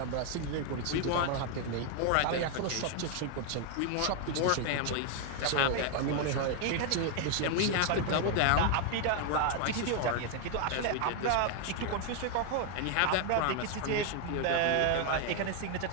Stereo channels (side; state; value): both; different; correlation 0.01